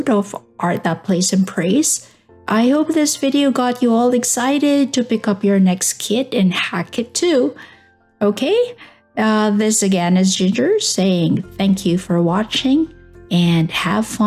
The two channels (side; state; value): both; identical; correlation 1.00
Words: of Art That Plays and Prays. I hope this video got you all excited to pick up your next kit and hack it too. Okay, this again is Ginger saying thank you for watching and have